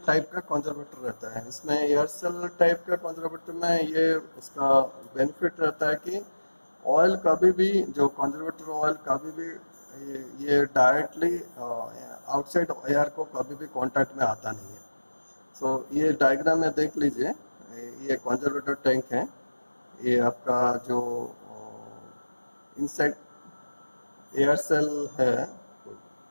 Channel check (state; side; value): inverted; both; correlation -1.00